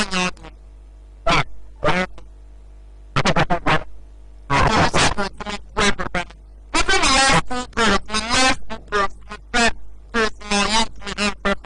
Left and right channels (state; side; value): identical; both; correlation 1.00